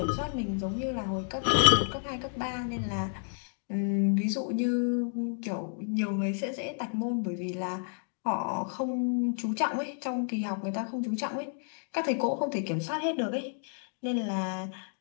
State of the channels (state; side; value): silent; right; 57 dB below the other